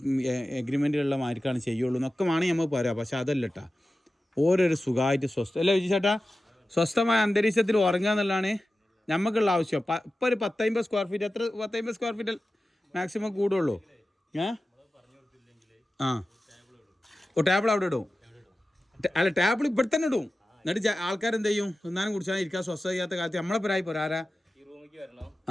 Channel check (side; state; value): both; normal; correlation 0.94